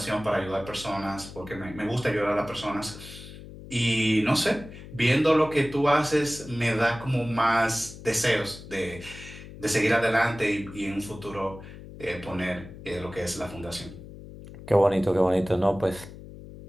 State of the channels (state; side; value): noise; left; hum, 15 dB below the sound